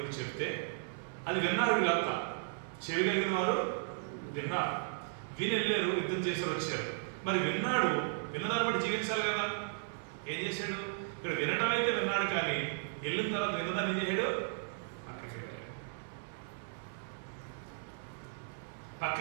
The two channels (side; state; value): left; silent; 54 dB below the other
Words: చెప్తే అది విన్నారు. వీళ్ళంతా చెవి కలిగిన వారు విన్నారు, విని వెళ్ళారు, యుద్ధం చేశారు, వచ్చారు. మరి విన్నదాన్ని బట్టి జీవించాలి కదా. ఏం చేశాడు? ఇక్కడ వినడం అయితే విన్నాడు, కానీ వెళ్ళిన తర్వాత విన్నదాన్ని ఏం చేశాడు?